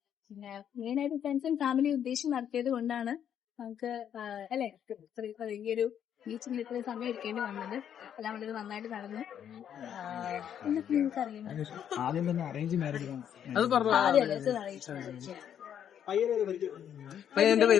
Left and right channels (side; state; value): right; quieter; 9.3 dB